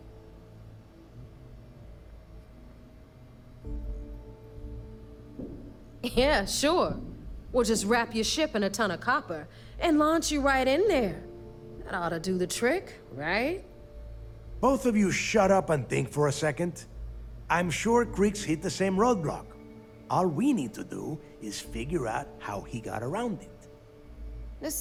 Yeah, sure. We'll just wrap your ship in a ton of copper and launch you right in there. That ought to do the trick, right? Both of you shut up and think for a second. I'm sure Creeks hit the same roadblock. All we need to do is figure out how he got around it. This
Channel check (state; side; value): identical; both; correlation 1.00